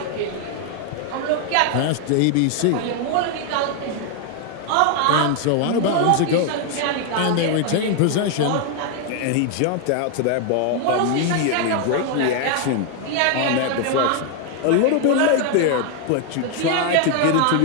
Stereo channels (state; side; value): different; both; correlation 0.01